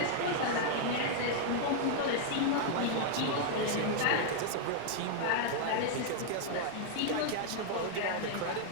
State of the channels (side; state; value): both; different; correlation -0.01